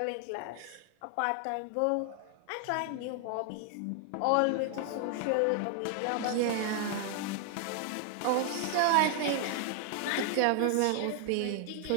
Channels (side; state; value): both; different; correlation 0.00